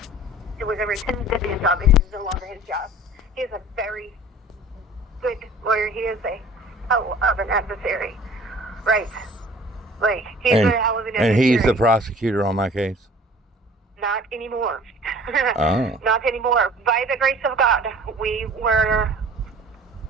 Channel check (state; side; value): normal; both; correlation 0.47